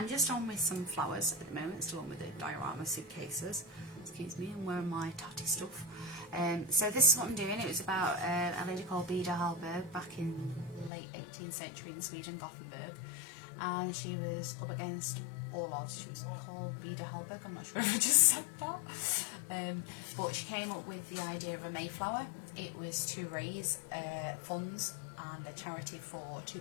just on with some flowers at the moment, still on with the diorama suitcases. Excuse me, I'm wearing my tatty stuff. So this is what I'm doing. It was about a lady called Beda Hallberg back in late 18th century in Sweden, Gothenburg. And she was up against all odds. She was called Beda Hallberg, I'm not sure if I just said that. But she came up with the idea of a Mayflower. It was to raise funds and a charity for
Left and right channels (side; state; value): right; drops out; at 10.9 s